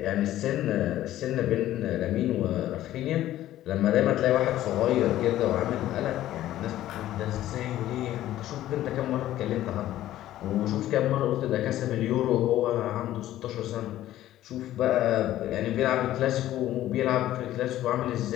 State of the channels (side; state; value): right; quieter; 13.7 dB